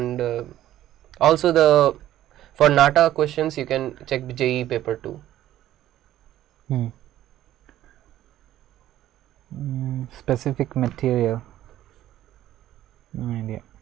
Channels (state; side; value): quieter; left; 13.1 dB